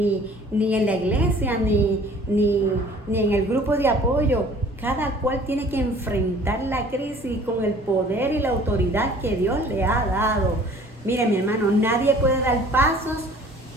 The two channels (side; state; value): both; normal; correlation 0.51